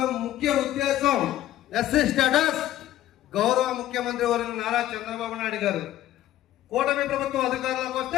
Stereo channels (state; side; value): quieter; right; 13.5 dB